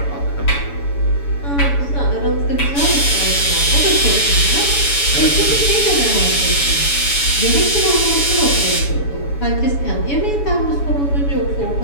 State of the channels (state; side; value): late; right; 7.0 ms